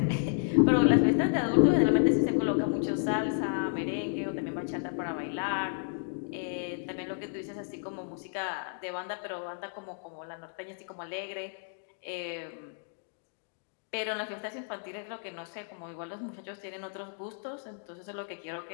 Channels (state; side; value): silent; right; digital silence